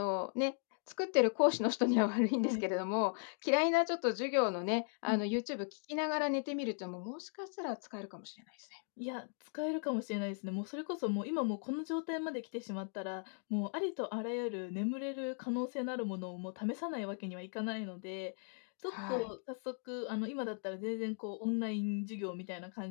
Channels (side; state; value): right; silent; 53 dB below the other